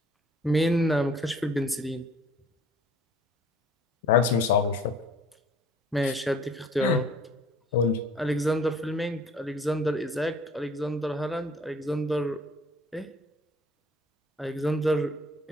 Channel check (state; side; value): normal; both; correlation 0.52